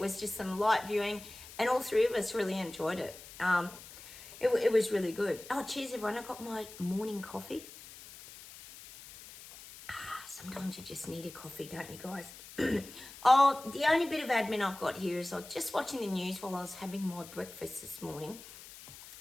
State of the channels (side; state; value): left; noise; hiss, 16 dB below the sound